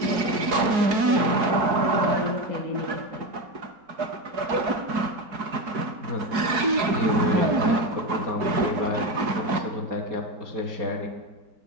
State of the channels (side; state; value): left; late; 4.7 ms